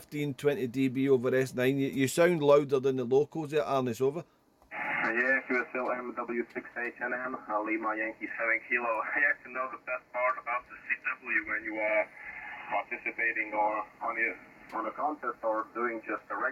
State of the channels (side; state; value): both; identical; correlation 1.00